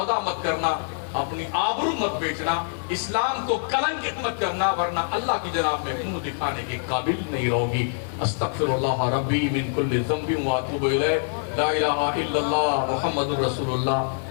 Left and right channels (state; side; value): silent; right; digital silence